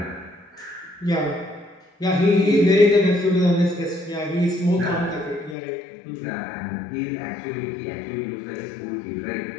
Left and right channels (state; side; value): drops out; right; at 5.6 s